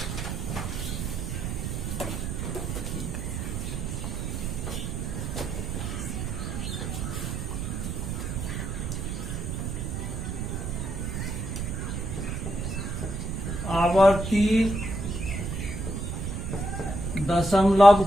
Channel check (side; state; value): right; noise; rumble, 3 dB below the sound